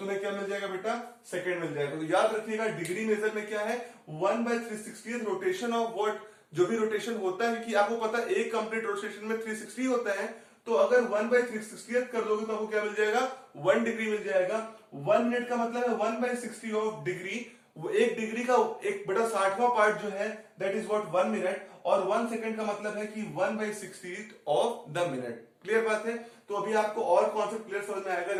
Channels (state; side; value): identical; both; correlation 1.00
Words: क्या मिल जाएगा बेटा, सेकेंड मिल जाएगा। तो याद रखिएगा डिग्री मेजर में क्या है, 1/360th रोटेशन ऑफ व्हाट, जो भी रोटेशन होता है, कि आपको पता है एक कंप्लीट रोटेशन में 360 होता है, तो अगर 1/360th कर दोगे तो आपको क्या मिल जाएगा, 1 डिग्री मिल जाएगा। 1 मिनट का मतलब है 1/60 ऑफ डिग्री। वो एक डिग्री का 1/60वां पार्ट जो है दैट इज व्हाट 1 मिनट, और 1 सेकेंड का मतलब है कि 1/60th of the minute. Clear बात है। तो अभी आपको और कॉन्सेप्ट क्लियर समझ में आएगा